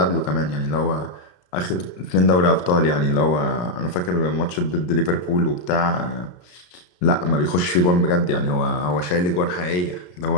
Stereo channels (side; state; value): right; late; 34 ms